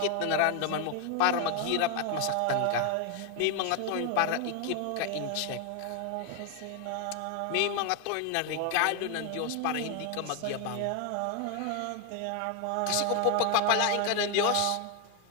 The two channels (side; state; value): both; different; correlation 0.01